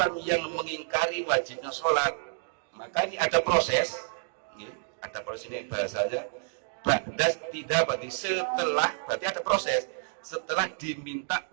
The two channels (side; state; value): left; silent; digital silence